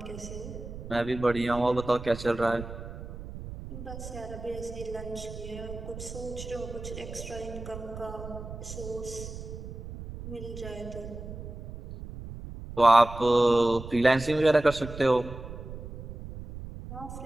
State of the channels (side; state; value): right; noise; rumble, 11 dB below the sound